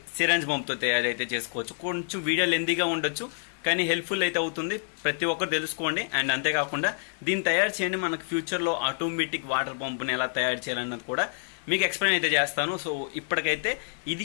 సిరంజ్ పంప్తో తయారైతే చేసుకోవచ్చు. కొంచెం వీడియో లెందీగా ఉండొచ్చు కానీ హెల్ప్ఫుల్ అయితే అవుతుంది. ప్రతి ఒక్కరు తెలుసుకోండి. అండ్ అంతేకాకుండా దీన్ని తయారు చేయండి మనకు ఫ్యూచర్లో ఆటోమేటిక్ వాటర్ పంప్ని ఎలా తయారు చేయాలన్నది కూడా మీకు ఎక్స్ప్లెయిన్ అయితే చేస్తాను. సో ఇప్పటికైతే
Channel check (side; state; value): right; silent; digital silence